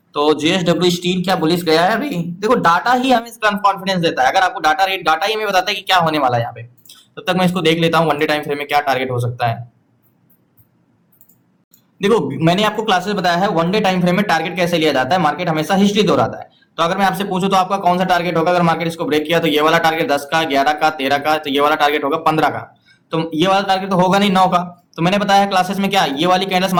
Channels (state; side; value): identical; both; correlation 1.00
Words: तो जेएसडब्ल्यू स्टील क्या बुलिश गया है अभी, देखो डाटा ही हमें इसका कॉन्फिडेंस देता है। अगर आपको डाटा ही हमें बताता है कि क्या होने वाला है यहाँ पे, तब तक मैं इसको देख लेता हूँ वन डे टाइम फ्रेम में क्या टारगेट हो सकता है। देखो मैंने आपको क्लासेस बताया है वन डे टाइम फ्रेम में टारगेट कैसे लिया जाता है, मार्केट हमेशा हिस्ट्री दोहराता है। तो अगर मैं आपसे पूछूं तो आपका कौन सा टारगेट होगा, अगर मार्केट इसको ब्रेक किया तो ये वाला टारगेट 10 का, 11 का, 13 का, तो ये वाला टारगेट होगा 15 का। तो ये वाला टारगेट तो होगा नहीं 9 का। तो मैंने बताया है क्लासेस में क्या, ये वाली कैंडल्स